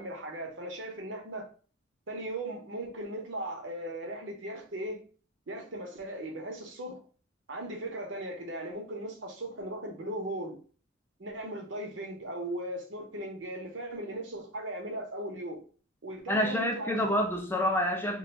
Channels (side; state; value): both; normal; correlation 0.15